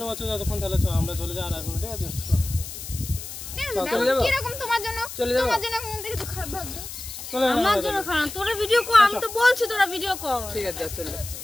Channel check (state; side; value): noise; left; hiss, 10 dB below the sound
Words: আছে যতক্ষণ তাহলে চল আমরা চলে যাই আর আসবো না ঠিক আছে চলে যাবো? কিরকম তোমার জন্য চলে যাবো? তোমার জন্য মন থেকে তো খারাপ ভাববে চলে যাবো আমার জন্য খারাপ তোরা ভিডিও কর আমি তো বলছি তোরা ভিডিও কর ঠিক আছে চলো